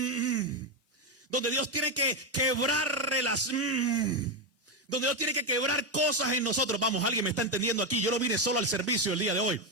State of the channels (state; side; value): normal; both; correlation 0.07